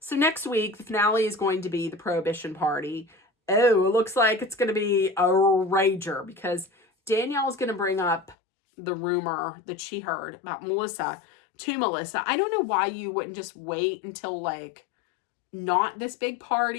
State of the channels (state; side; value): drops out; right; at 8.3 s